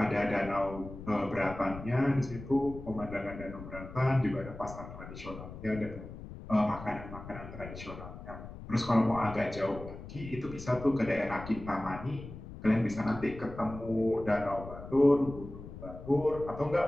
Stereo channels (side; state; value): left; noise; rumble, 12 dB below the sound